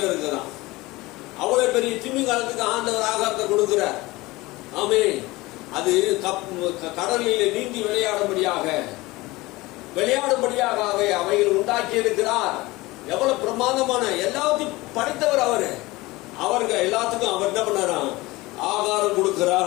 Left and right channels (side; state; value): right; quieter; 20.8 dB